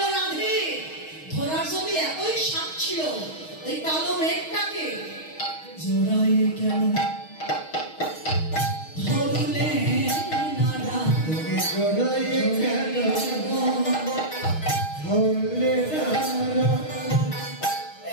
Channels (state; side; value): late; right; 6.4 ms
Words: রাধে ধরার যদি এতই সাপ ছিল, ওই কালো মেঘটাকে জোড়ায় কেন ধরলে না, জোড়ায় কেন ধরলে না,